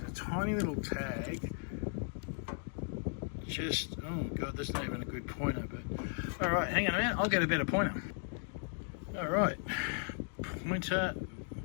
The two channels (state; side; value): silent; right; 54 dB below the other